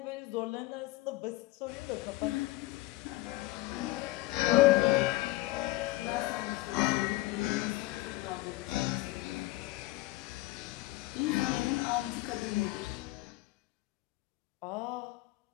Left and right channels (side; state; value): right; quieter; 18.9 dB